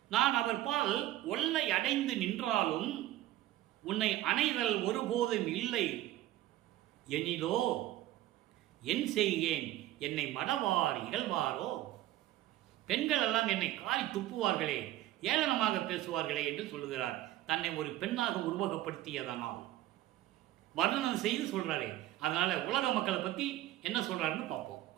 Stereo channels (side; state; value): left; quieter; 14.8 dB